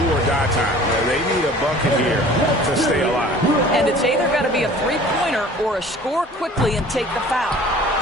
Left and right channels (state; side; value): normal; both; correlation 0.47